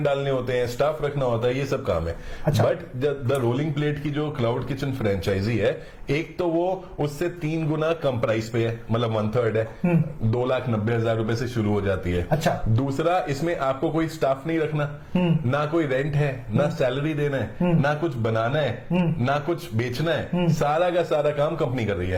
डालने होते हैं, स्टाफ रखना होता है, ये सब काम है। अच्छा। बट द रोलिंग प्लेट की जो क्लाउड किचन फ्रेंचाइजी है, एक तो वो उससे 3 गुना कम प्राइस पे है, मतलब 1/3 है। 2,90,000 रुपए से शुरू हो जाती है। अच्छा। दूसरा, इसमें आपको कोई स्टाफ नहीं रखना, ना कोई रेंट है, ना सैलरी देना है, ना कुछ बनाना है, ना कुछ बेचना है। सारा का सारा काम कंपनी कर रही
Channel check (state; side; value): identical; both; correlation 1.00